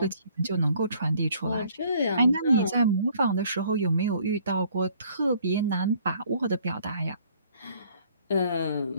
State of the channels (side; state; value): both; inverted; correlation -0.60